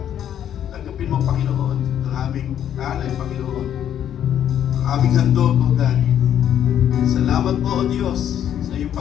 Tanggapin mo, Panginoon, ang aming alay, Panginoon. Ang aming handog, O God. Salamat po, O Diyos, sa iyong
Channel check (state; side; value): quieter; right; 10.0 dB